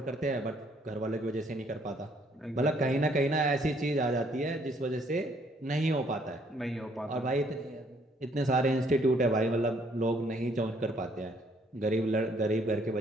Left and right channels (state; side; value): normal; both; correlation 0.65